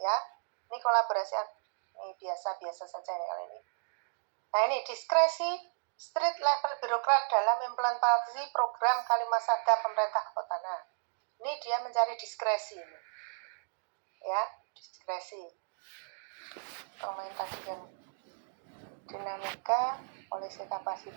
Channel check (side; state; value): left; silent; digital silence